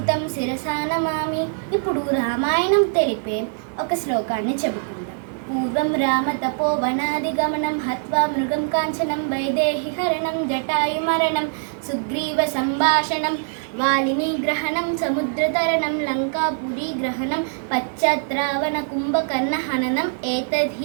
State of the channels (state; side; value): silent; left; 58 dB below the other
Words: శిరసా నమామి. ఇప్పుడు రామాయణం తెలిపే ఒక శ్లోకాన్ని చెప్పుకుందాం. పూర్వం రామ తపోవనాదిగమనం హత్వా మృగం కాంచనం వైదేహి హరణం జటాయుమరణం సుగ్రీవ సంభాషణం వాలిని గ్రహణం సముద్రతరణం లంకాపురీ గ్రహణం పశ్చాత్ రావణ కుంభకర్ణ హననం